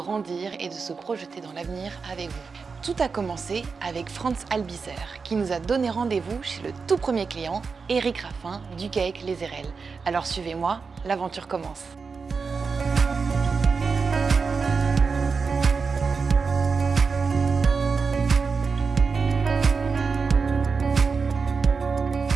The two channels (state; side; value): quieter; left; 5.0 dB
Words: et de se projeter dans l'avenir avec vous. Tout a commencé avec Franz Albizer qui nous a donné rendez-vous chez le tout premier client, Éric Raffin du GAEC Les Érelles. Alors suivez-moi, l'aventure commence.